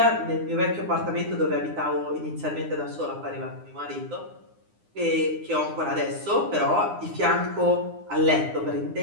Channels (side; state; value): left; late; 9.8 ms